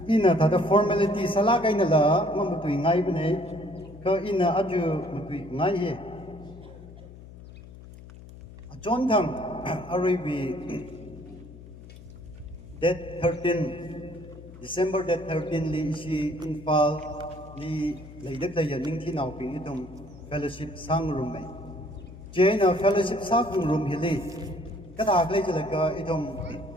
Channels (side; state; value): left; noise; hum, 17 dB below the sound